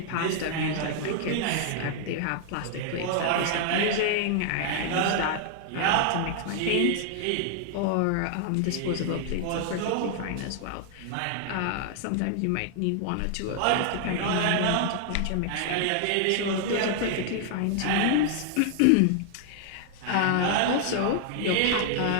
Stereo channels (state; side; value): different; both; correlation 0.00